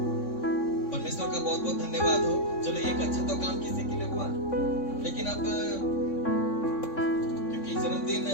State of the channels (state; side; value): late; right; 3.6 ms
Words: परमेश्वर का बहुत बहुत धन्यवाद हो, चलो एक अच्छा तो काम किसी के लिए हुआ। लेकिन अब क्योंकि जन्मदिन